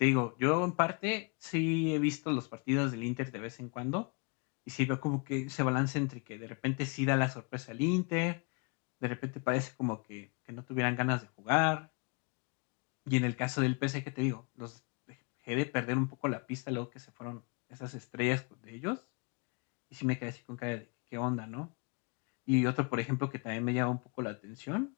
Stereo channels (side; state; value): right; quieter; 33.3 dB